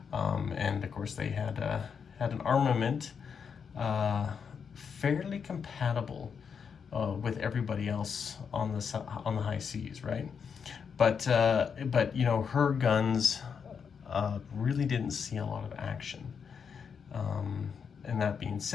And of course they had an armament fairly compatible with everybody else on the high seas, right? But you know, her guns really didn't see a lot of action. And that being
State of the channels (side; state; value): right; quieter; 6.5 dB